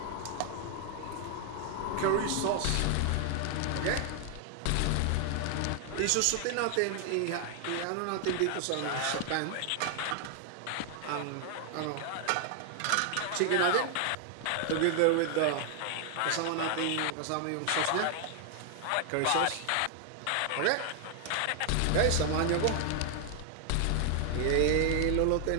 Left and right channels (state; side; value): different; both; correlation 0.00